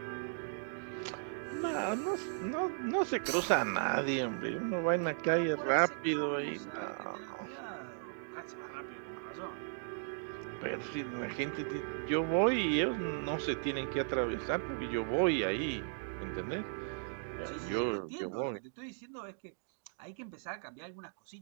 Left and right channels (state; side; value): silent; left; digital silence